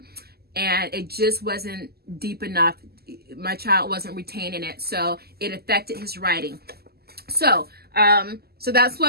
and it just wasn't deep enough. My child wasn't retaining it, so it affected his writing. So that's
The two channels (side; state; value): left; late; 0.46 ms